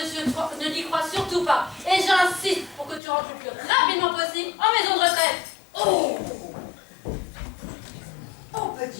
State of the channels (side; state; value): right; drops out; at 3.0 s